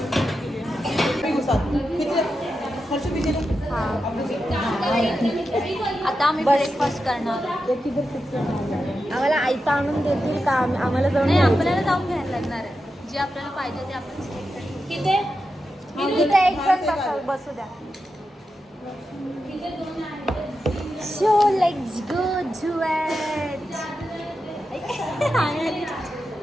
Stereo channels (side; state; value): both; normal; correlation 0.89